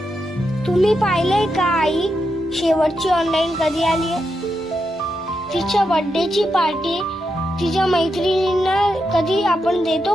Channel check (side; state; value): both; normal; correlation 0.85